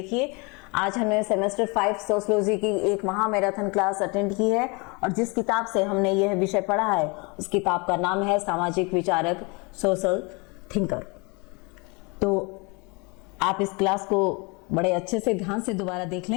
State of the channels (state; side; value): quieter; right; 29.7 dB